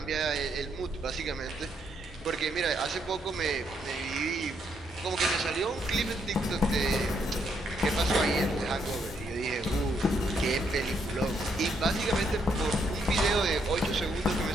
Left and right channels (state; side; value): normal; both; correlation 0.74